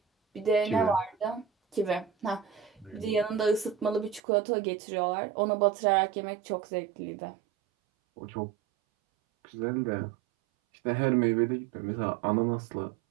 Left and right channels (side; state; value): left; drops out; at 4.2 s